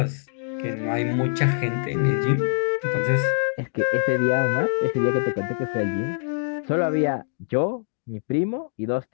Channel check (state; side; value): silent; right; digital silence